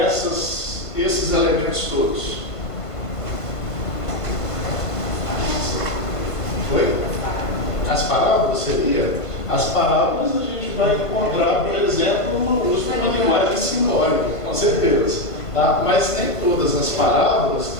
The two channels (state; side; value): late; right; 1.5 ms